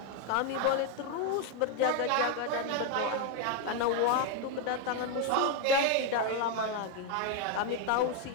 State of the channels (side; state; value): both; different; correlation 0.01